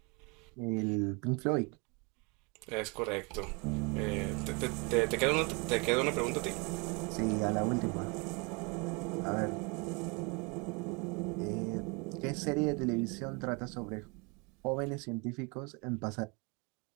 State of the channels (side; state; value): left; quieter; 30.2 dB